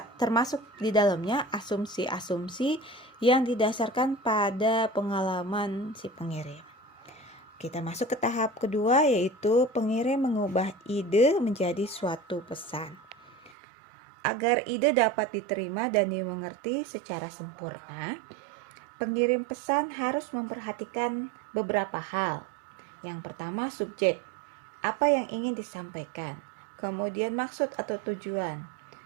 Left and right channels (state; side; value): drops out; left; at 13.6 s